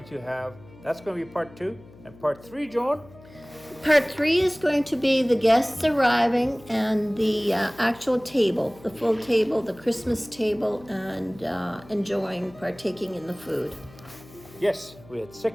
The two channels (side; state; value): left; noise; hum, 22 dB below the sound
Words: to have, that's going to be part 2, and part 3, Joan. Part 3 is going to be the guests arriving and the actual table, the full table, the Christmas table, and partaking in the food. Yes, we had